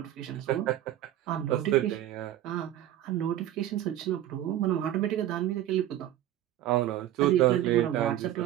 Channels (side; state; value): left; quieter; 12.8 dB